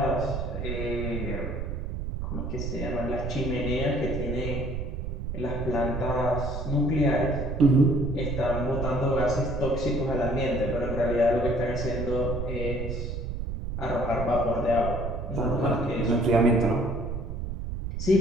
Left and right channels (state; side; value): noise; right; rumble, 4 dB below the sound